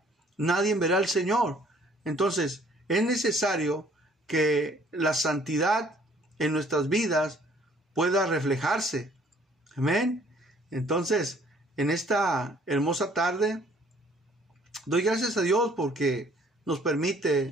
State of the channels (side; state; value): both; normal; correlation 0.59